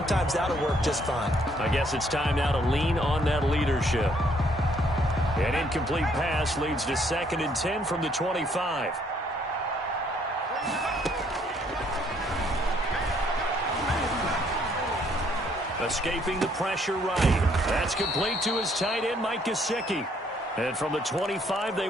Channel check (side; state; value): both; normal; correlation 0.66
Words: that'll work just fine. I guess it's time now to lean on that leadership. An incomplete pass leads to 2nd and 10 from the 25. Escaping the pressure right. That's complete to his tight end, Mike Gesicki. And from the 25, they